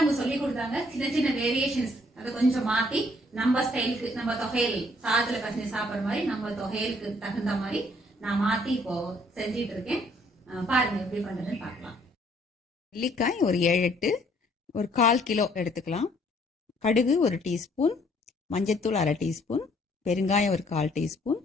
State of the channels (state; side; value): normal; both; correlation 0.64